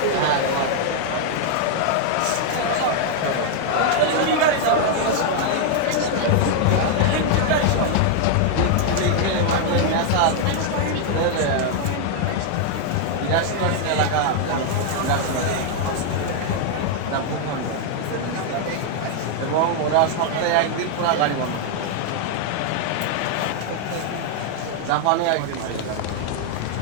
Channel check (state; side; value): different; both; correlation 0.00